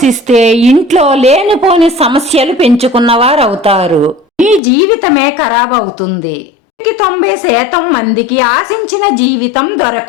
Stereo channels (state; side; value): drops out; right; at 4.6 s